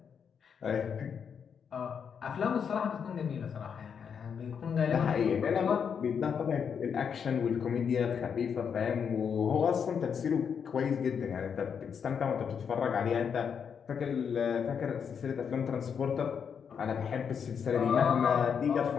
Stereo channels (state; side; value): quieter; right; 7.0 dB